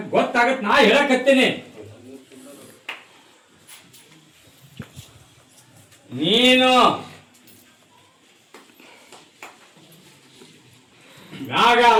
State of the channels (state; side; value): identical; both; correlation 1.00